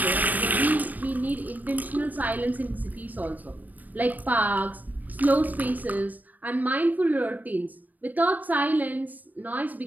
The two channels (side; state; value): left; late; 0.083 ms